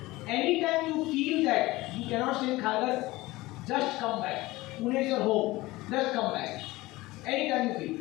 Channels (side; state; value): right; quieter; 19.6 dB